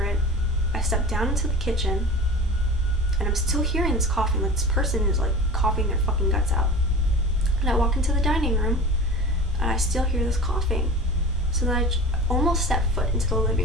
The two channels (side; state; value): both; normal; correlation 0.35